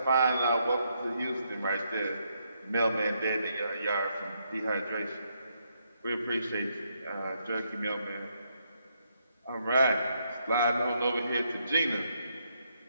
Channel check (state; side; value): inverted; both; correlation -0.77